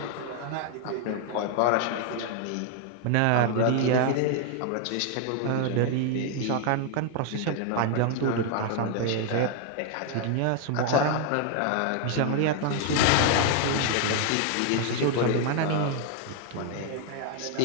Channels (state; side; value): different; both; correlation 0.00